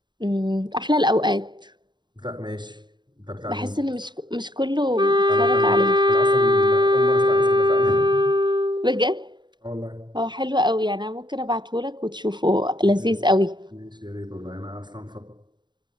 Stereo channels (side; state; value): left; late; 0.22 ms